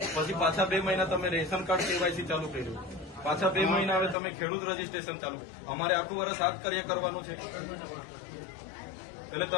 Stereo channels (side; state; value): right; drops out; at 4.2 s